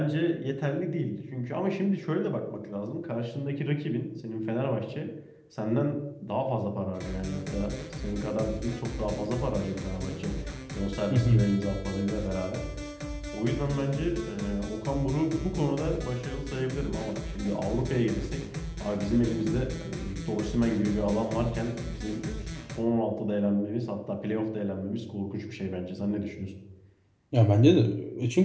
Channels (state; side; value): identical; both; correlation 1.00